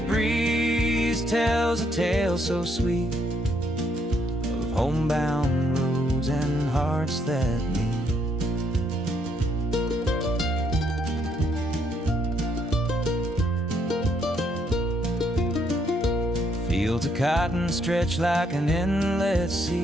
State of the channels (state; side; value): normal; both; correlation 0.72